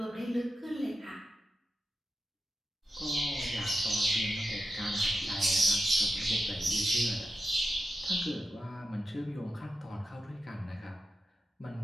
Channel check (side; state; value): both; normal; correlation 0.91